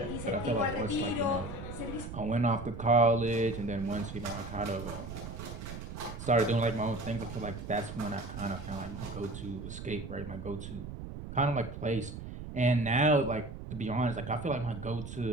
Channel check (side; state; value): right; noise; rumble, 9 dB below the sound